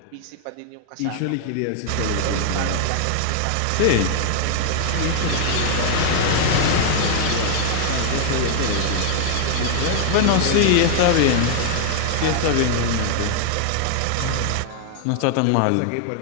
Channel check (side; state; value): both; different; correlation 0.00